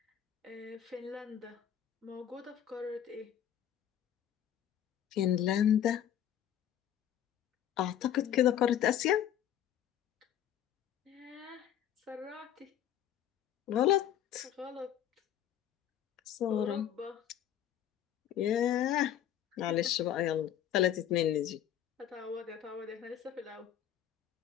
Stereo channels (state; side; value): quieter; right; 10.6 dB